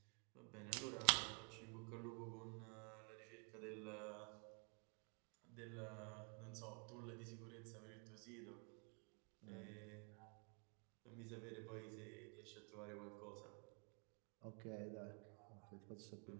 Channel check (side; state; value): left; quieter; 39.8 dB